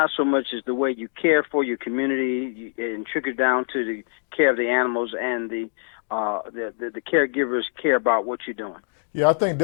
so much as the way you care for your community and trickle down to the care of the animals and the caregivers care about what you're doing? Yeah, I think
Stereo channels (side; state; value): right; silent; digital silence